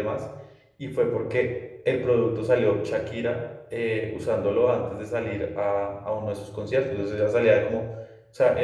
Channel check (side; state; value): both; identical; correlation 1.00